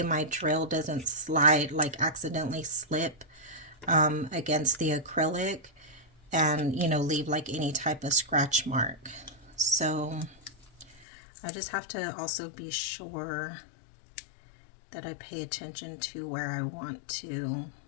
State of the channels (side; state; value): right; drops out; at 11.1 s